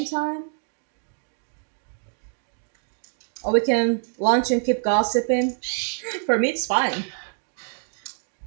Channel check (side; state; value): left; silent; 60 dB below the other